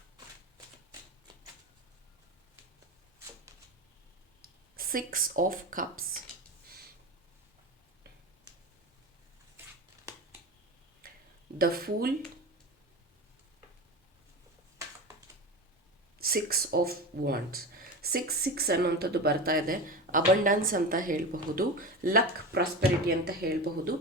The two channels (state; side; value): normal; both; correlation 0.26